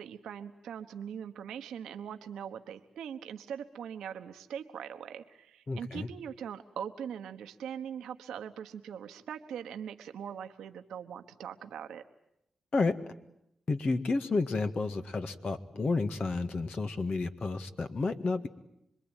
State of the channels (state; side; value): normal; both; correlation 0.87